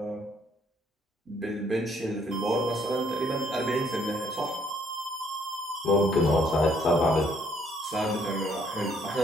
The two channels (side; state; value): both; normal; correlation 0.66